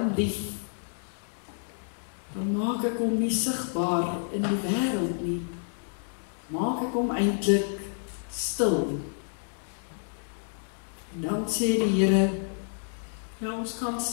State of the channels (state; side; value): silent; right; digital silence